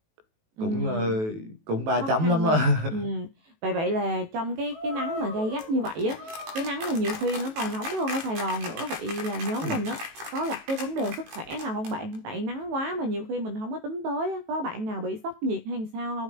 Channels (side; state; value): left; late; 18 ms